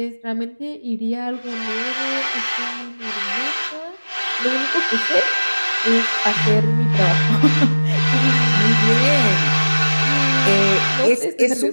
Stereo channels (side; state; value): both; inverted; correlation -1.00